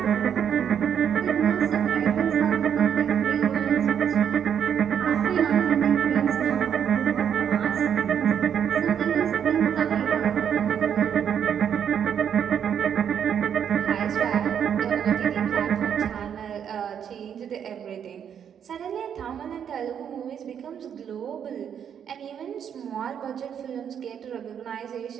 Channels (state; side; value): quieter; left; 8.4 dB